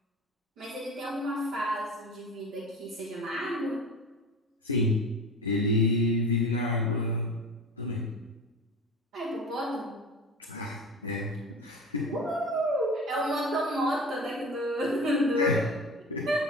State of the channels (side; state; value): both; normal; correlation 0.33